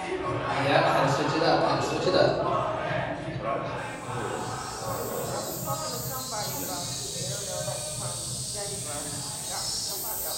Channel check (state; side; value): identical; both; correlation 1.00